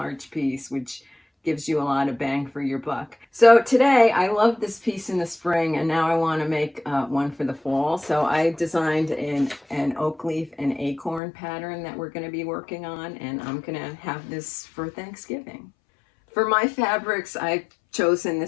piece, which gives you a lot of bang for your buck. So today, I love this piece in the spring, and now I want to make one for the fall. So I designed an oak leaf and acorn pattern that we're going to be working on, and I'm going to have this for Thanksgiving. For my fabrics, I've chosen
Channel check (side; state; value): right; drops out; at 11.2 s